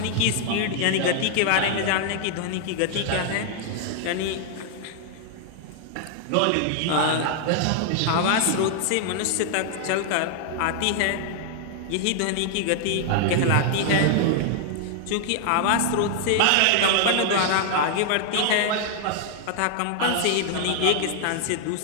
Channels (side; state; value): both; different; correlation -0.01